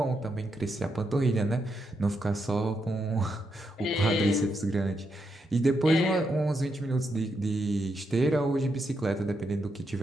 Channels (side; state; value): both; normal; correlation 0.82